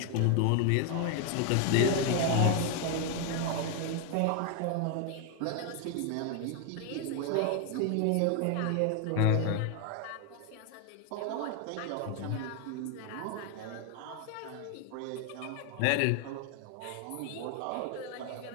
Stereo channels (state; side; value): different; both; correlation 0.01